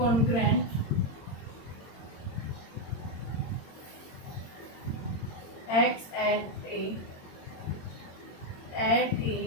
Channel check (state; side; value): late; right; 22 ms